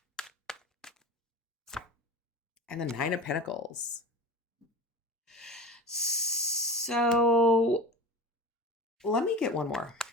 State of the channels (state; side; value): normal; both; correlation 0.32